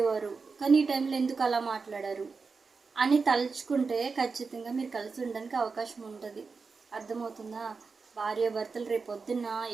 కానీ ఈ టైంలో ఎందుకు అలా మాట్లాడారు అని తలుచుకుంటే ఖచ్చితంగా మీరు కలిసి ఉండడానికి అవకాశం ఉంటుంది. అర్థమవుతుందా? భార్య భర్తలు రేపొద్దున్న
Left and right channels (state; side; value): quieter; left; 4.7 dB